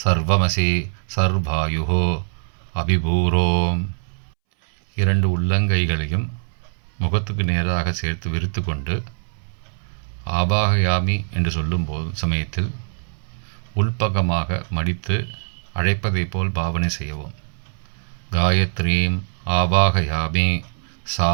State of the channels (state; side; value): silent; left; 64 dB below the other